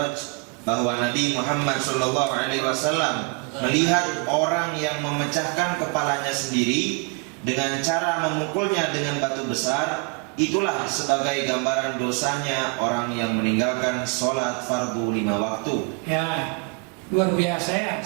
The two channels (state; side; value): quieter; left; 31.2 dB